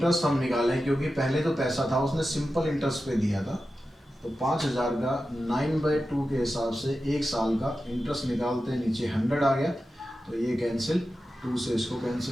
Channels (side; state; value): both; normal; correlation 0.92